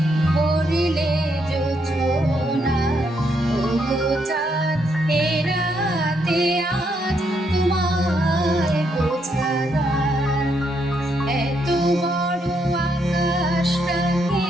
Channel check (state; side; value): normal; both; correlation 0.76